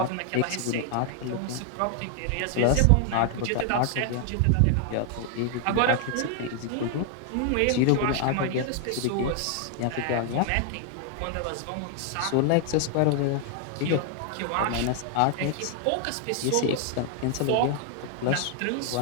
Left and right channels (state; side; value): different; both; correlation 0.00